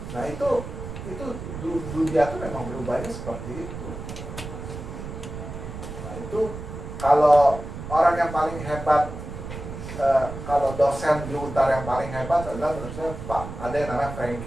Nah itu dunia tuh memang berubahnya seperti itu. Nah itu kalau orang yang paling hebat, kalau dosen di Untar yang paling hebat adalah menurut saya Pak, ada yang namanya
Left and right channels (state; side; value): noise; right; rumble, 9 dB below the sound